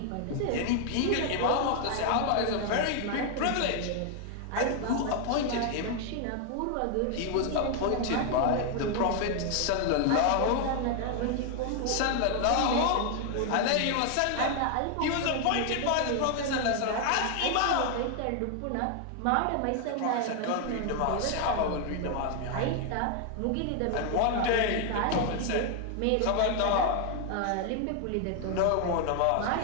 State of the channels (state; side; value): different; both; correlation 0.00